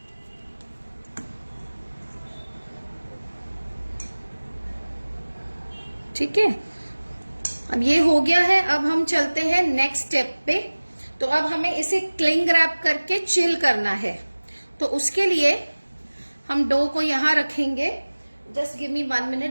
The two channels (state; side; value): inverted; both; correlation -1.00